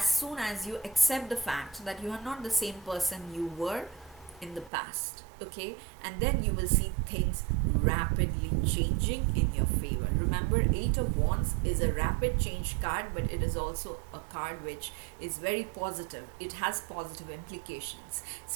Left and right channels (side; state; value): left; drops out; at 4.7 s